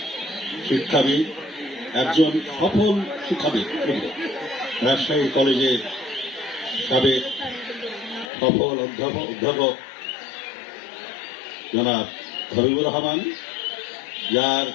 শিক্ষাবিদ, একজন সফল শিক্ষাবিদ, রাজশাহী কলেজের সাবেক সফল অধ্যাপক জনাব হাবিবুর রহমান, যার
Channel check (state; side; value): drops out; right; at 8.3 s